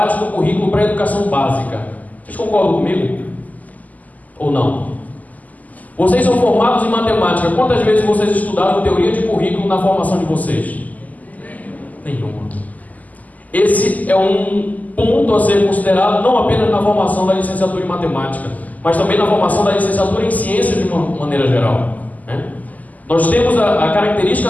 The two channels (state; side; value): late; right; 0.078 ms